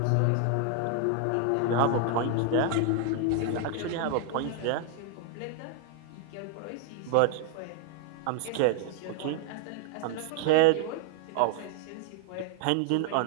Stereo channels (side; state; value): both; different; correlation 0.00